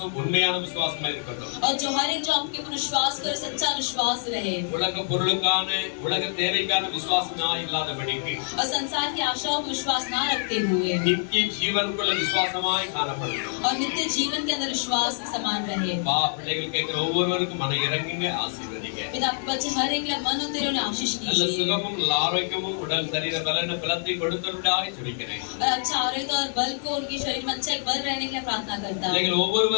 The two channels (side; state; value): right; silent; 61 dB below the other